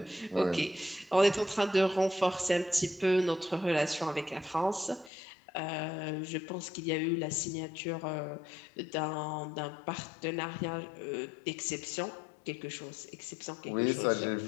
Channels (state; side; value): drops out; right; at 5.1 s